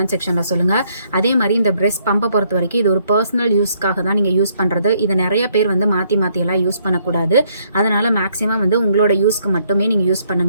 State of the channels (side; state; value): both; inverted; correlation -0.69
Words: செக்ஷனில் சொல்லுங்கள். அதே மாதிரி இந்த பிரெஸ்ட் பம்பை பொறுத்த வரைக்கும் இது ஒரு பர்சனல் யூஸ்க்காக தான் நீங்கள் யூஸ் பண்ணுறது. இதை நிறைய பேர் வந்து மாற்றியெல்லாம் யூஸ் பண்ணக்கூடாது. அதனால் மேக்ஸிமம் வந்து உங்களோட யூஸ்க்கு மட்டுமே நீங்கள் யூஸ்